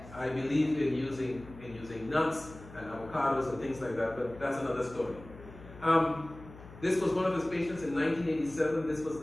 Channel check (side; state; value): left; noise; hum, 18 dB below the sound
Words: believe in using nuts and avocados and things like that, but that's another story. This was one of his patients in 1987. This was